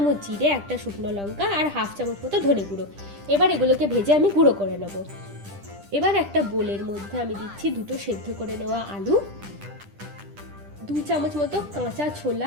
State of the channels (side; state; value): left; late; 10 ms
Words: জিরে, 1টা শুকনো লঙ্কা আর হাফ চামচ মতো ধনে গুঁড়ো। এবার এগুলোকে ভেজে আমি গুঁড়ো করে নেবো। এবার একটা বোলের মধ্যে আমি দিচ্ছি 2 সেদ্ধ করে নেওয়া আলু, 2 চামচ মতো কাঁচা